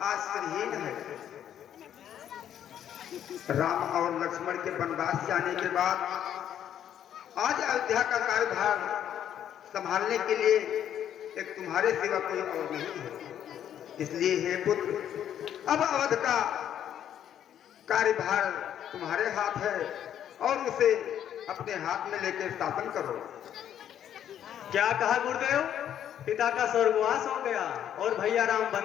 आश्रयहीन है। राम और लक्ष्मण के वनवास जाने के बाद आज अयोध्या का कार्यभार संभालने के लिए एक तुम्हारे सिवा कोई और नहीं है। इसलिए हे पुत्र, अब अवध का कार्यभार तुम्हारे हाथ है और उसे अपने हाथ में लेकर शासन करो। क्या कहा गुरुदेव? पिता का स्वर्गवास हो गया और भैया राम वन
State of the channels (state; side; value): quieter; right; 10.1 dB